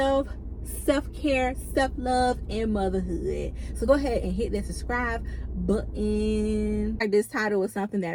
Self-care, self-love, and motherhood. So go ahead and hit that subscribe button. This title is something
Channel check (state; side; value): identical; both; correlation 1.00